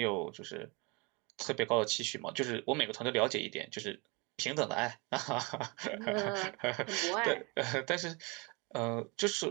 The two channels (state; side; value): quieter; left; 28.7 dB